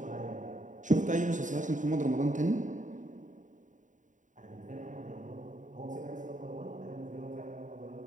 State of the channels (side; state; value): left; late; 0.36 ms